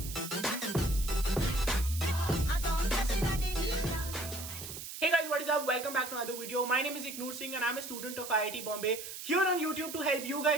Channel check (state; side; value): noise; right; hiss, 9 dB below the sound